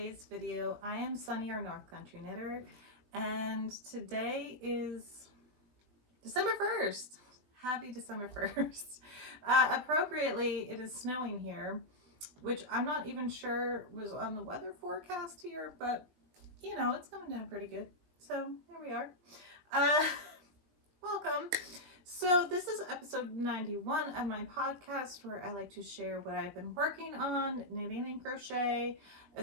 video. I am Sunny, your North Country Knitter, and today is December 1st. Happy December 1st. Appropriately, it is snowing here, which I'm not even sure was on the weather forecast here, but you know, it's coming down pretty good. So here we are. Welcome. So this is episode 91 of my podcast, where I like to share what I've been working on, knitting and crochet,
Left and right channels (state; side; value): late; left; 20 ms